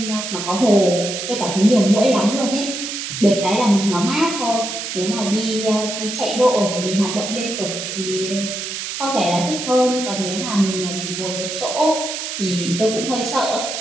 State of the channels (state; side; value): noise; right; hiss, 5 dB below the sound